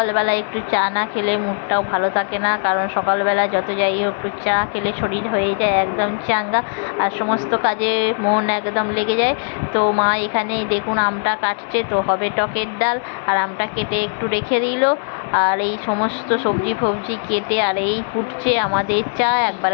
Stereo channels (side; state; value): right; silent; 66 dB below the other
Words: একটু চা না খেলে মুডটাও ভালো থাকে না, কারণ সকালবেলা যত যাই হোক একটু চা খেলে শরীর হয়ে যায় একদম চাঙ্গা, আর সমস্ত কাজে মন একদম লেগে যায়। তো মা এখানে দেখুন আমটা কাটছে, তো হবে টকের ডাল। আর আমটা কেটে একটু রেখে দিল, আর এই সমস্ত সবজি ফবজি কেটে আর এই ফুটছে আমাদের চা। একবার